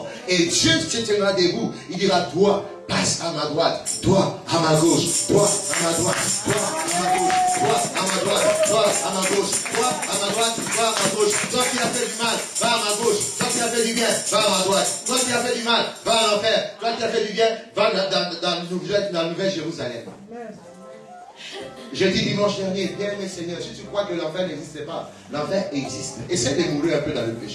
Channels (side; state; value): both; identical; correlation 1.00